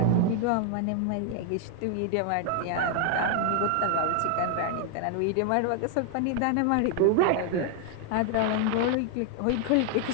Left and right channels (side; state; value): both; different; correlation 0.00